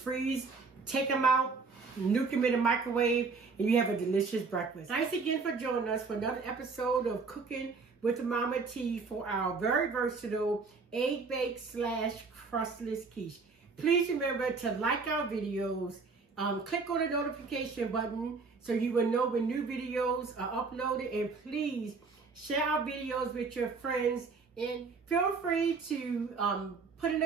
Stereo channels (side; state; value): left; quieter; 4.5 dB